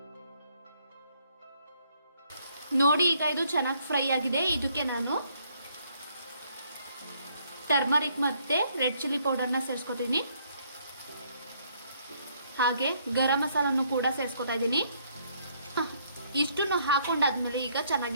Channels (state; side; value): inverted; both; correlation -0.69